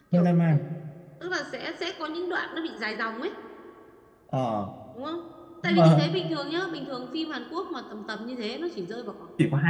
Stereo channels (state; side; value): identical; both; correlation 1.00